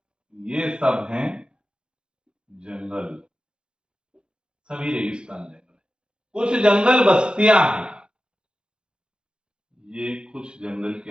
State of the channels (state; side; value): late; left; 0.050 ms